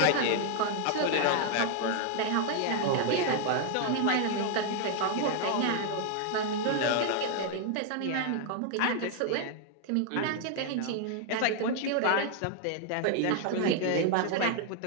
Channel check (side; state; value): both; different; correlation 0.00